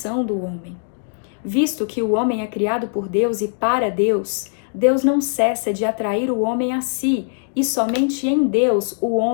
do homem. Visto que o homem é criado por Deus e para Deus, Deus não cessa de atrair o homem a si, e somente em Deus o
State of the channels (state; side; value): silent; right; digital silence